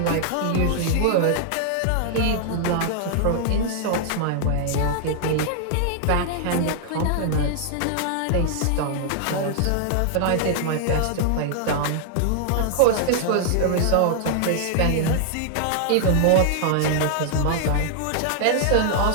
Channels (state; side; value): different; both; correlation -0.01